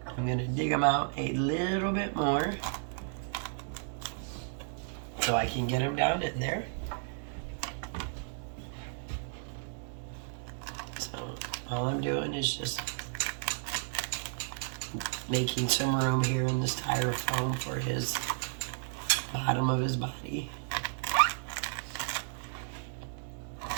I'm going to dig him out a little bit more so I can get him down in there. So all I'm doing is just making some room here in the styrofoam for his bottom of his body.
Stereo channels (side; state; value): left; silent; digital silence